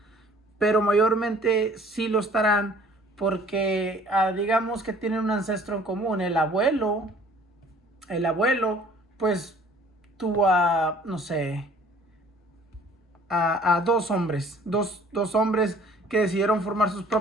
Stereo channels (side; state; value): both; normal; correlation 0.53